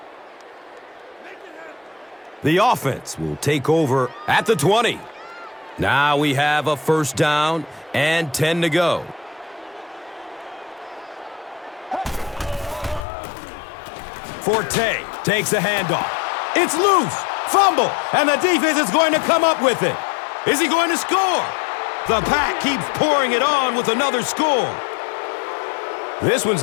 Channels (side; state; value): right; drops out; at 13.1 s